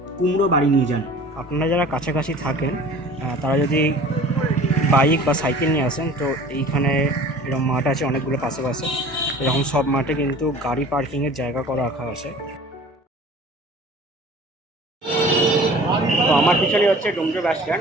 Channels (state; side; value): normal; both; correlation 0.45